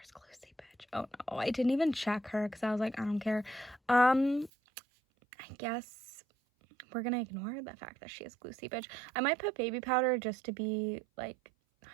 glue seepage. Oh no, I didn't even check her because I was like, I don't care. I guess we're gonna ignore the fact that she has glue seepage. I might put baby powder just to be like,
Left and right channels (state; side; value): drops out; left; at 4.5 s